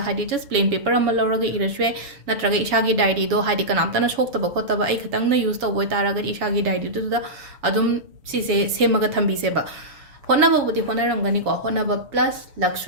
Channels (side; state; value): left; late; 7.1 ms